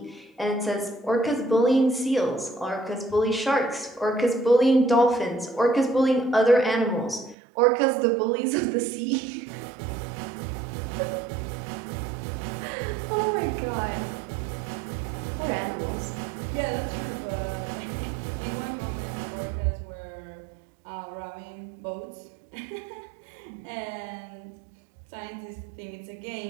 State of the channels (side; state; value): left; drops out; at 7.4 s